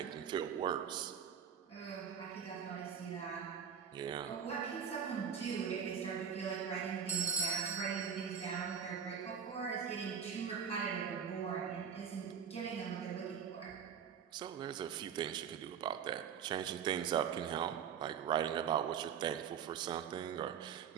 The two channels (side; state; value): left; quieter; 7.6 dB